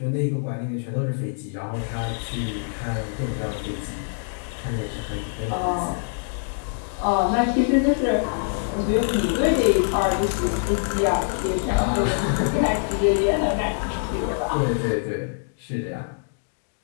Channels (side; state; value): right; silent; digital silence